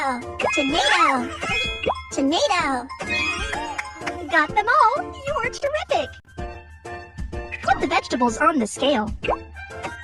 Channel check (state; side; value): identical; both; correlation 1.00